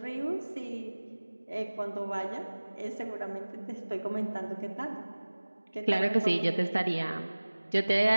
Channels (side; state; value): both; inverted; correlation -1.00